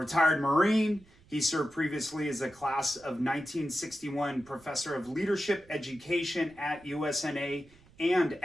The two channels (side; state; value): right; noise; rumble, 27 dB below the sound